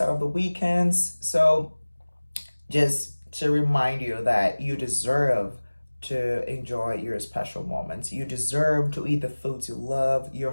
out of the weekends. So just to remind you that you deserve to enjoy your special moments. You deserve to eat the foods you love, your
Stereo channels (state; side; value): inverted; both; correlation -1.00